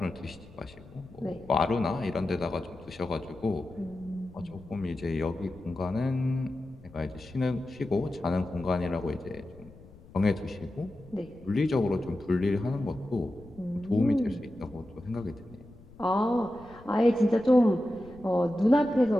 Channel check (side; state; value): left; noise; rumble, 22 dB below the sound